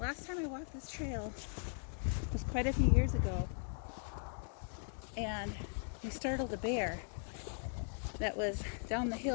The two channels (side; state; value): right; silent; 52 dB below the other